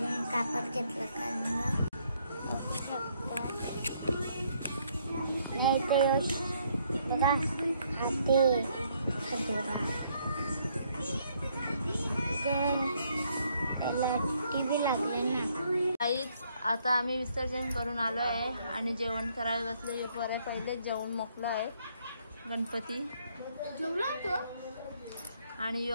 कापड घेतलं कारण बघा हाती खजोरा त्याला टीव्ही लागले ना. काहीच आता आम्ही विसर्जन करून आलो आहे आणि जेवण करायला बसले. पहिले जेवण मोकलं आहे गणपती आणि यो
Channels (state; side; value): inverted; both; correlation -0.69